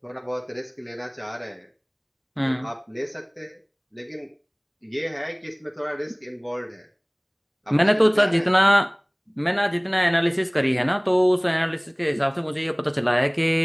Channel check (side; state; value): both; identical; correlation 1.00